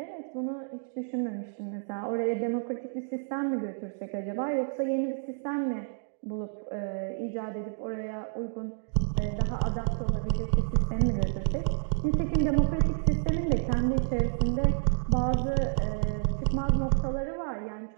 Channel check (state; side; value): silent; left; digital silence